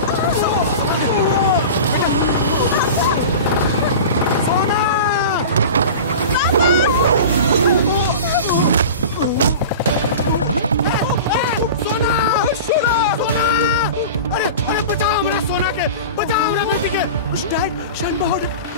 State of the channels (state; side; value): inverted; both; correlation -0.33